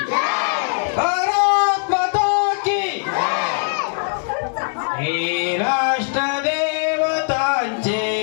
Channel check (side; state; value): right; silent; 56 dB below the other